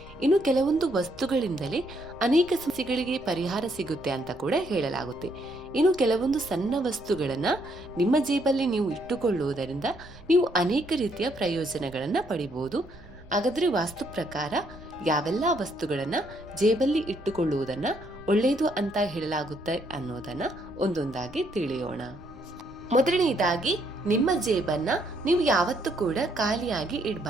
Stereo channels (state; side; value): noise; right; rumble, 22 dB below the sound